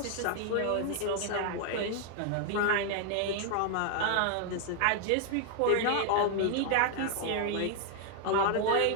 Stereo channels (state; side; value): different; both; correlation 0.00